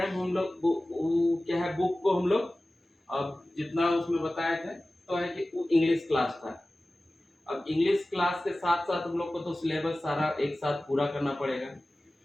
हम लोग क्या है, बुक को हम लोग अब जितना उसमें बताए थे तो है कि वो इंग्लिश क्लास था। अब इंग्लिश क्लास के साथ साथ हम लोग को तो सिलेबस सारा एक साथ पूरा करना पड़ेगा।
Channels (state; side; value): normal; both; correlation 0.97